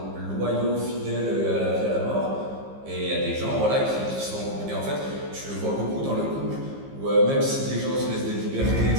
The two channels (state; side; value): late; left; 15 ms